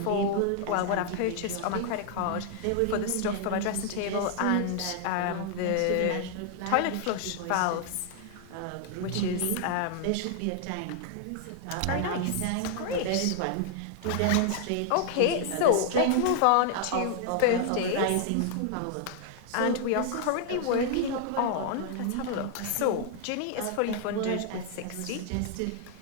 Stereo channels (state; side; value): different; both; correlation 0.00